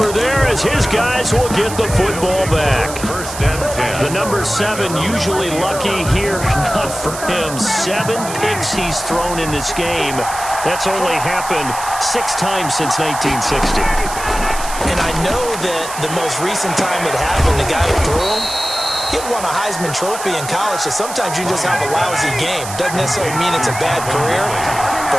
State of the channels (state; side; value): noise; right; hiss, 10 dB below the sound